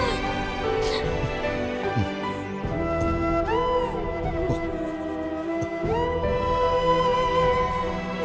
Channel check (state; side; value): identical; both; correlation 1.00